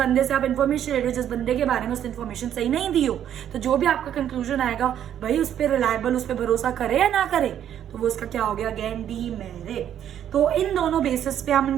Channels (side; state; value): left; quieter; 10.2 dB